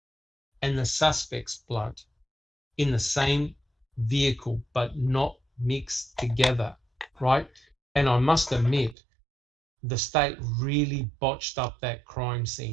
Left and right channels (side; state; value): left; drops out; at 9.0 s